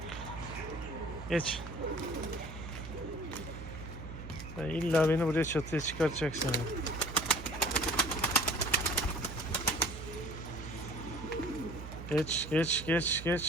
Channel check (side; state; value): right; noise; hum, 10 dB below the sound